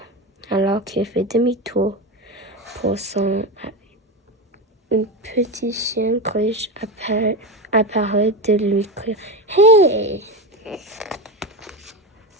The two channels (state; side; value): normal; both; correlation 0.19